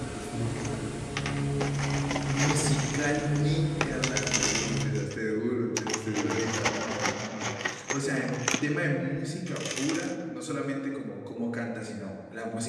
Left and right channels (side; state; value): both; identical; correlation 1.00